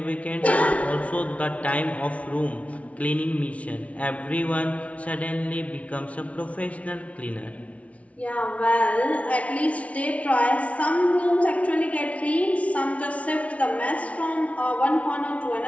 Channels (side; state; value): right; late; 0.065 ms